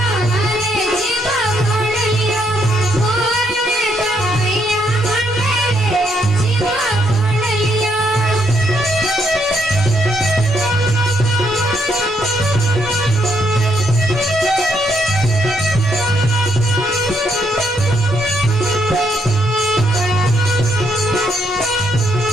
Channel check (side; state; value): both; normal; correlation 0.74